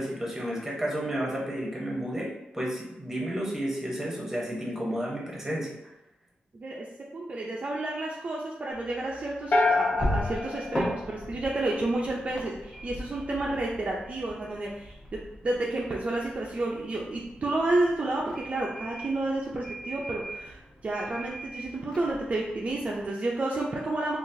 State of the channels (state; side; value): normal; both; correlation 0.87